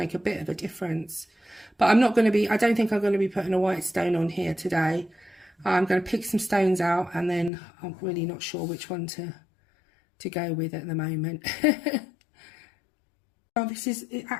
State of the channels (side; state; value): right; drops out; at 7.5 s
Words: a bit of a difference. But I'm not going to be, I don't think I'm going to be putting a white stone on here today. I'm going to pick some stones out, and then I'm really not sure which one to go with at the moment. Well, this is